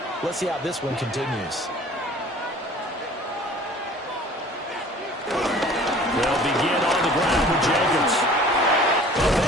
Let's see how this one continues. They'll begin on the ground with Jacobs.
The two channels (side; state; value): both; normal; correlation 0.48